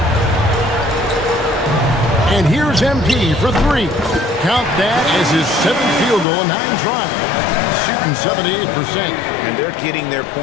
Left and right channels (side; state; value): right; drops out; at 6.2 s